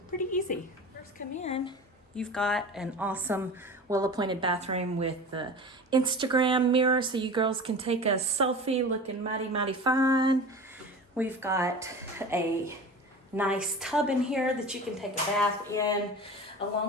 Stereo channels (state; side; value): normal; both; correlation 0.34